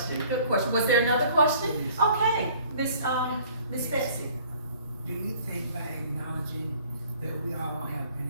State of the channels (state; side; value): inverted; both; correlation -0.54